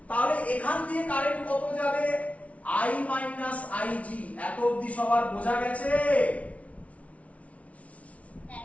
তাহলে এখান দিয়ে কারেন্ট কত যাবে? I minus IG. এত অবধি সবার বোঝা গেছে?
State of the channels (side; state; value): right; late; 0.065 ms